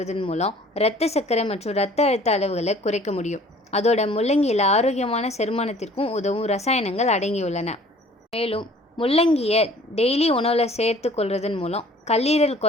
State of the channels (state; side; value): normal; both; correlation 0.52